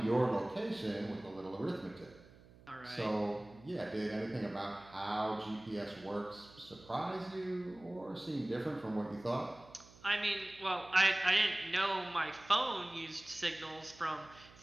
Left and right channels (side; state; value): right; noise; hum, 23 dB below the sound